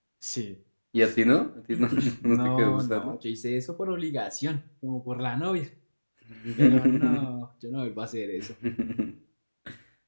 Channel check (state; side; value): inverted; both; correlation -1.00